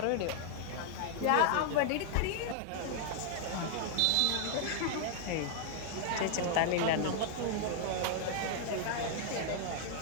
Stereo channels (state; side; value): different; both; correlation 0.00